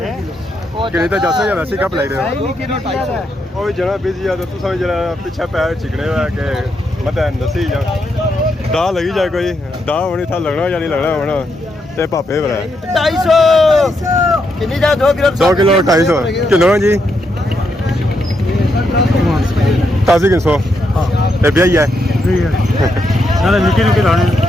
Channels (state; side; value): normal; both; correlation 0.80